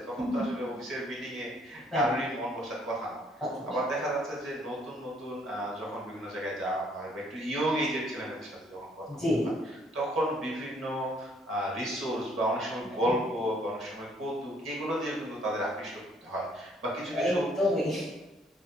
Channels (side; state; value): both; normal; correlation 0.64